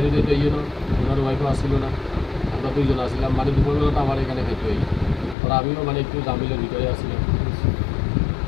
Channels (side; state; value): right; drops out; at 5.4 s